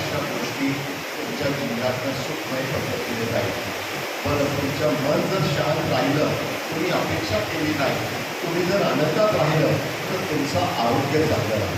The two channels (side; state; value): both; identical; correlation 1.00